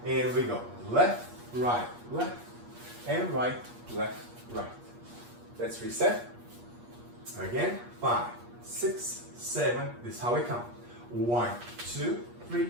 And we go left, left, and right, left, right. Let's reset. Again. 5, 6, 7. This is how we count. 1, 2, 3,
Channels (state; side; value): late; left; 8.4 ms